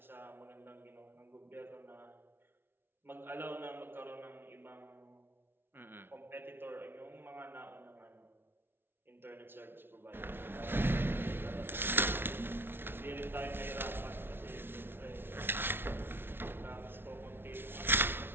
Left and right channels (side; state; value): left; late; 0.11 ms